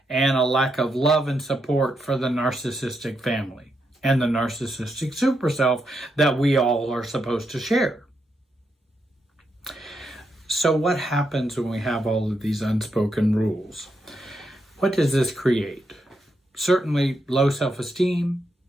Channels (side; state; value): both; normal; correlation 0.82